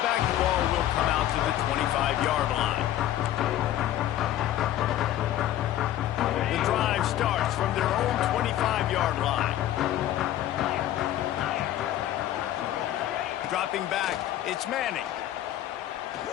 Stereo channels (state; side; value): quieter; right; 12.8 dB